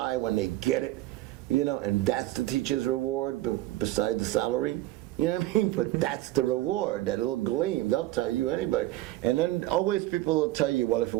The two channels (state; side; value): quieter; left; 16.5 dB